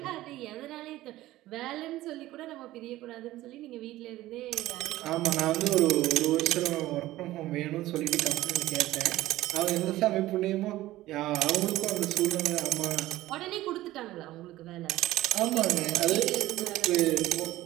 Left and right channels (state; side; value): quieter; left; 16.2 dB